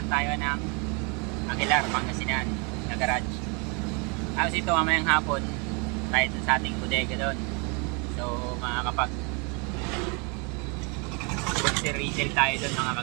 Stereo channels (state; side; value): quieter; left; 33.2 dB